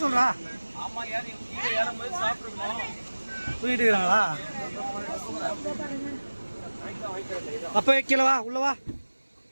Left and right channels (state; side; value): inverted; both; correlation -1.00